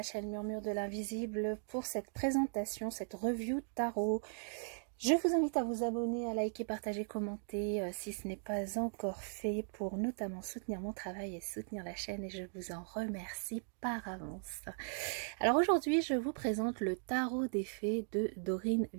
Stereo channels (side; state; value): left; silent; 52 dB below the other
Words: chaîne Murmure de l'Invisible pour cette présentation, cette review tarot. Je vous invite à vous abonner, à liker, partager, commenter si ce n'est pas encore fait pour notamment soutenir mon travail et soutenir la chaîne et je vous en remercie par avance. Alors aujourd'hui, je vous présente le tarot des fées de Dorine